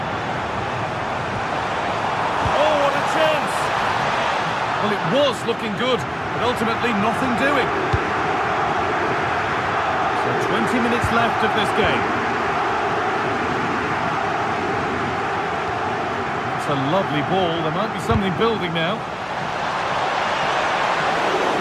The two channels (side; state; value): both; identical; correlation 1.00